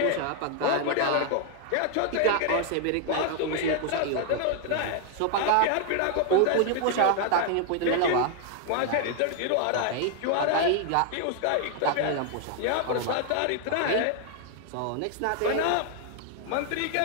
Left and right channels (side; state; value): both; different; correlation 0.00